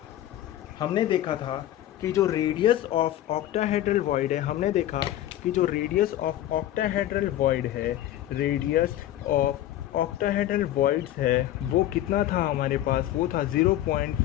हमने देखा था कि जो रेडियस ऑफ ऑक्टाहेड्रल वॉइड है, हमने देखा कि जो रेडियस ऑफ ऑक्टाहेड्रल वॉइड है, रेडियस ऑफ ऑक्टाहेड्रल वॉइड्स है वो कितना था हमारे पास, वो था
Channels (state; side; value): quieter; right; 13.2 dB